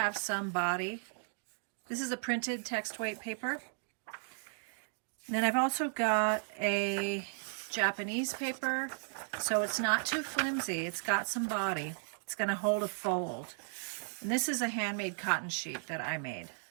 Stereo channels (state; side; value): silent; left; digital silence